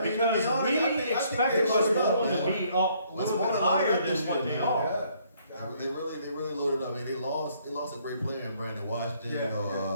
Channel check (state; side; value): inverted; both; correlation -0.66